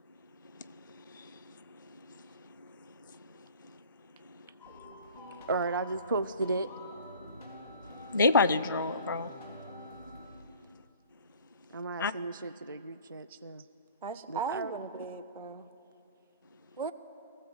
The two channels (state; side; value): inverted; both; correlation -0.48